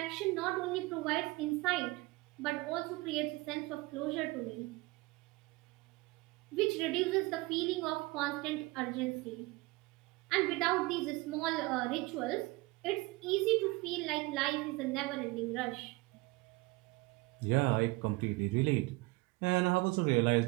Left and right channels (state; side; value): quieter; left; 22.8 dB